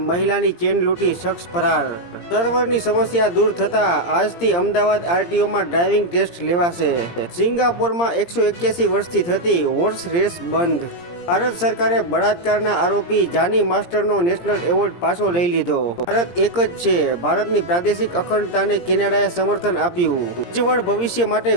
મહિલાની ચેન લૂંટી શખ્સ ફરાર। સર્વરની સમસ્યા દૂર થતા આજથી અમદાવાદ આરટીઓમાં ડ્રાઇવિંગ ટેસ્ટ લેવાશે। સિંગાપોરમાં 181 વર્ષથી થતી હોર્સ રેસ બંધ। ભારત સરકારે બળાત્કારના આરોપી જાની માસ્ટરનો નેશનલ એવોર્ડ પાછો લઈ લીધો। ભારત એક જ છે, ભારતની પ્રાદેશિક અખંડતાને કેનેડાએ સમર્થન આપ્યું। ઉજ્જવળ ભવિષ્ય માટે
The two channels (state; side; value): late; right; 17 ms